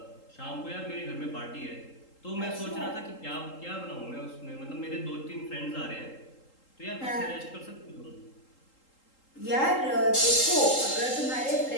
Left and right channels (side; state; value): right; late; 3.8 ms